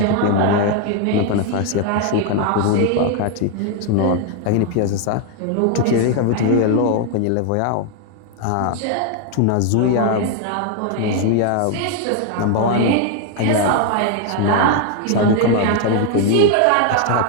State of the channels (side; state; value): both; different; correlation 0.01